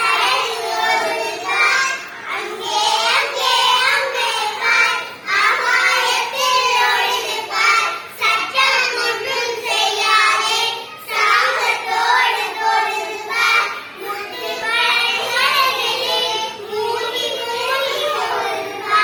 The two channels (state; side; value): identical; both; correlation 1.00